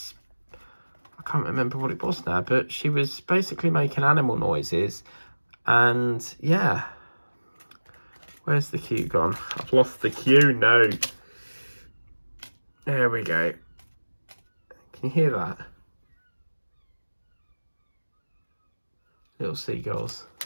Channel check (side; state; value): both; inverted; correlation -1.00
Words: can't remember what it was now, but she was basically making animal noises. And yeah, where's the cue gone? I've lost the cue. No, there we go. Can you hear that? Little seagulls,